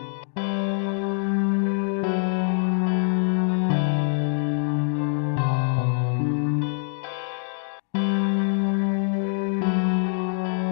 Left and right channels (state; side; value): silent; right; digital silence